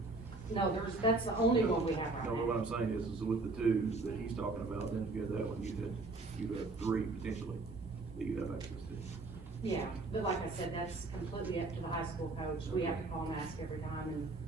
No, that's the only one we have right No, now. what I'm saying is with the two that he's talking about, then if you had that one, you'd have 3 potentially that you'd have access to. Yeah, but like I said, that's completely up to the high school coach. We have to call and ask every time, and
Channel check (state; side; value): quieter; left; 3.5 dB